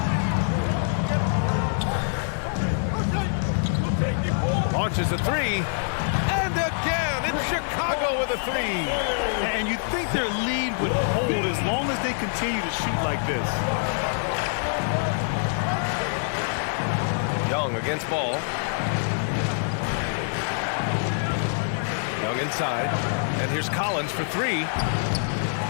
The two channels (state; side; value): silent; right; digital silence